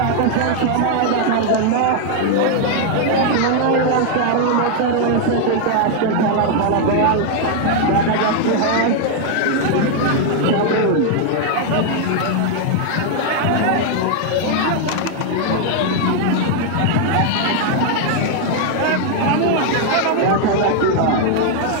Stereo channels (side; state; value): both; different; correlation 0.00